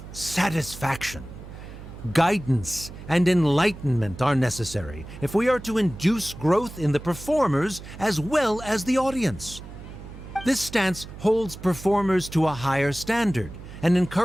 satisfaction. Guidance and enlightenment are necessary if we are to induce growth in the performers as well as the audience. This stance holds performers to a higher standard and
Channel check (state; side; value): noise; right; hum, 14 dB below the sound